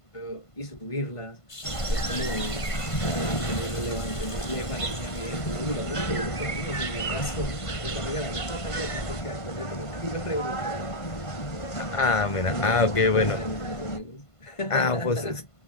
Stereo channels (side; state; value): right; late; 1.5 ms